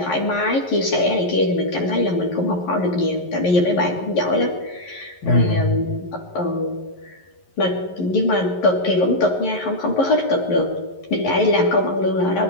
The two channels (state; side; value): late; right; 11 ms